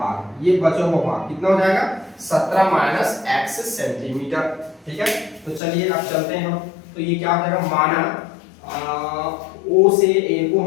ये बचा हुआ भाग कितना हो जाएगा 17 माइनस x सेंटीमीटर। ठीक है, तो चलिए अब चलते हैं हम। तो ये क्या हो जाएगा, माना ओ से ए को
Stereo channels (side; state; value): right; drops out; at 5.6 s